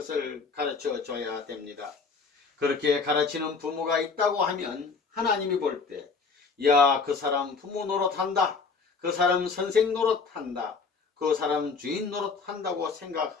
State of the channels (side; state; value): right; quieter; 4.8 dB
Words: 가르쳐 줘야 됩니다. 그렇게 가르치는 부모가 있다고 하면 하나님이 볼 때, 야, 그 사람 부모 노릇한다. 그 사람 선생 노릇한다. 그 사람 주인 노릇한다고